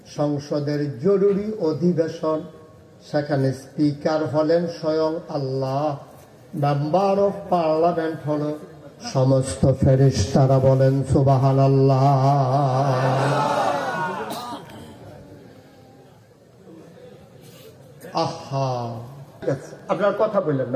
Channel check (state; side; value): identical; both; correlation 1.00